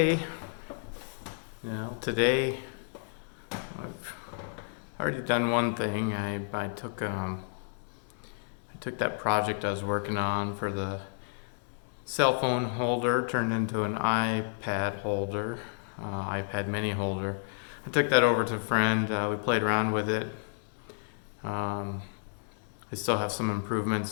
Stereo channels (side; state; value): right; silent; digital silence